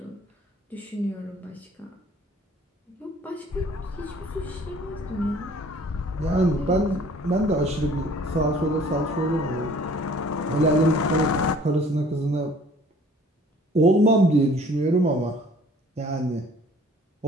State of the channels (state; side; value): normal; both; correlation 0.53